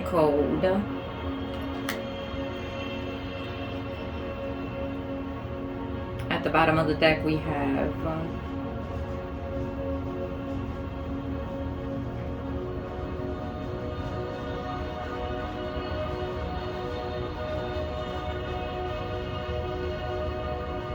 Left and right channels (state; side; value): identical; both; correlation 1.00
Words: Cold. At the bottom of the deck we have